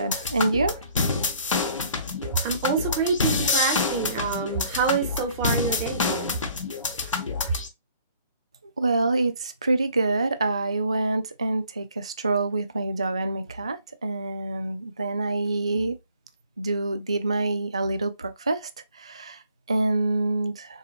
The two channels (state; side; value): inverted; both; correlation -0.60